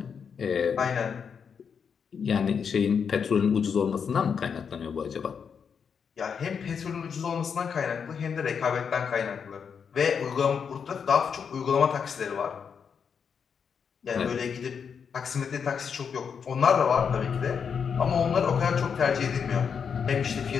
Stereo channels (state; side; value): quieter; right; 6.7 dB